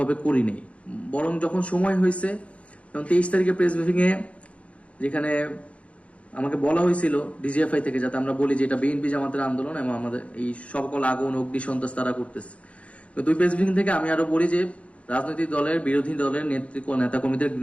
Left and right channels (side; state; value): right; late; 0.063 ms